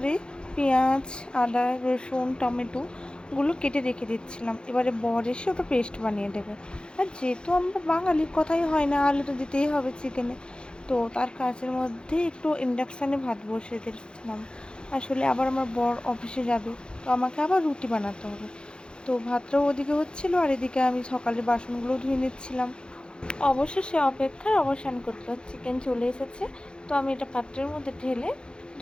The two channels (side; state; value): right; late; 0.050 ms